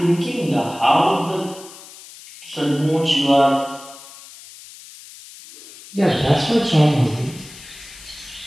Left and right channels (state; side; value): noise; left; hiss, 18 dB below the sound